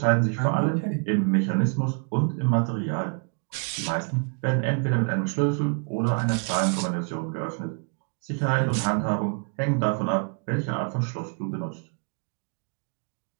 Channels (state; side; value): quieter; left; 39.2 dB